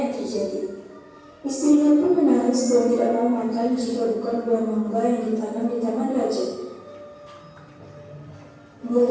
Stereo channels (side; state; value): both; identical; correlation 1.00